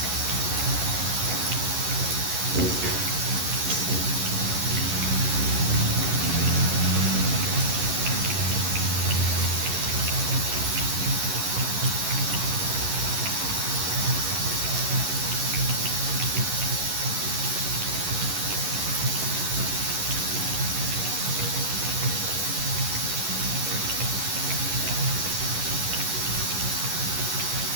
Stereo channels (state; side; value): late; left; 11 ms